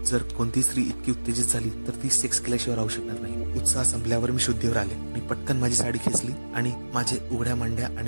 जर कोणती स्त्री इतकी उत्तेजित झाली तर ती सेक्स केल्याशिवाय राहू शकणार नाही. उत्साह संपल्यावर मी शुद्धीवर आले. मी पटकन माझी साडी खेचली आणि माझे उघड्या मांड्या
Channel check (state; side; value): inverted; both; correlation -1.00